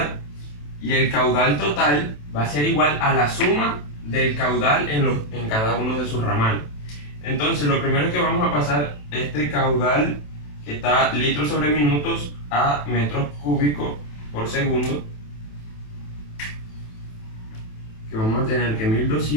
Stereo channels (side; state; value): right; late; 27 ms